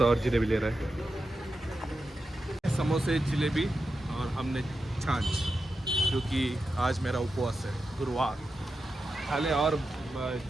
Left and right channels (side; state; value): both; normal; correlation 0.89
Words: और जलेबी ले रहा है। समोसे जलेबी और हमने छाछ, क्योंकि आज मेरा उपवास है, गुरुवार। खाले और